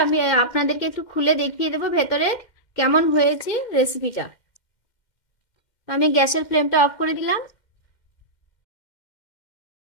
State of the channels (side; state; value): right; late; 2.1 ms